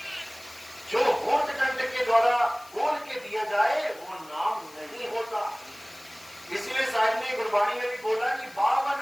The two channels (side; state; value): left; noise; hiss, 23 dB below the sound